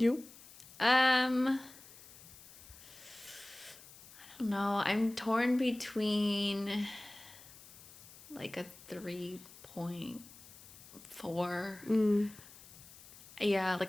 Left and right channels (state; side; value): noise; left; hiss, 19 dB below the sound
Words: I don't know. I'm torn between like a 3.4. Yeah,